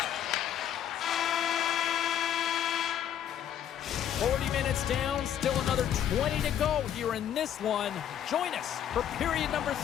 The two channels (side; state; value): right; quieter; 10.0 dB